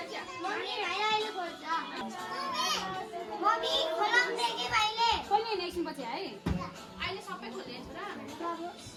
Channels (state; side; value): identical; both; correlation 1.00